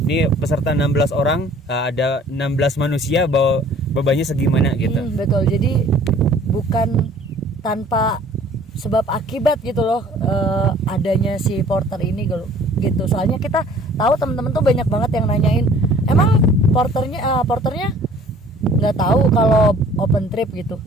Ini peserta 16 orang, ada 16 manusia, bawa bebannya segimana gitu. Betul, jadi bukan tanpa sebab akibat gitu loh adanya si porter ini gitu. Soalnya kita tahu teman-teman tuh banyak banget yang nanyain, emang porternya nggak tahu kalau open trip gitu.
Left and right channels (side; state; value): both; normal; correlation 0.53